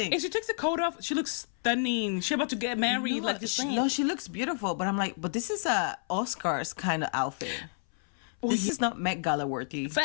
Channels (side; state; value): right; silent; 57 dB below the other